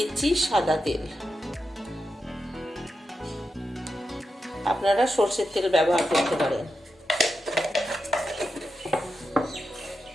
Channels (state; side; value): normal; both; correlation 0.88